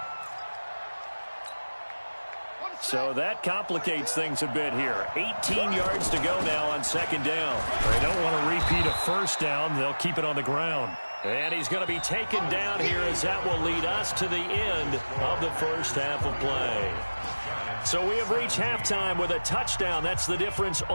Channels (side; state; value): both; inverted; correlation -1.00